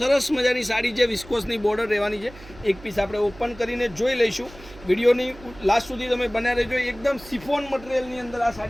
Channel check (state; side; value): noise; right; hum, 19 dB below the sound